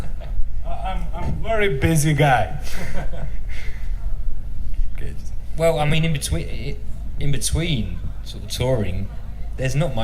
I'm a very busy guy. Okay. Well, I mean, in between sort of touring, there's not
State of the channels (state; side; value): identical; both; correlation 1.00